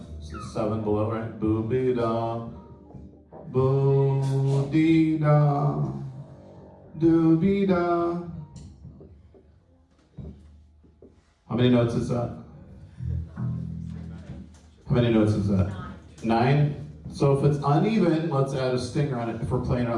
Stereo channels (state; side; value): identical; both; correlation 1.00